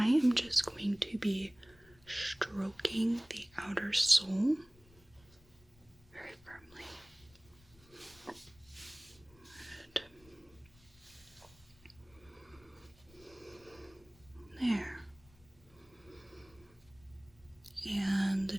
am just going to be stroking the outer sole very firmly. Good. There. And the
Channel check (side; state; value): left; noise; rumble, 27 dB below the sound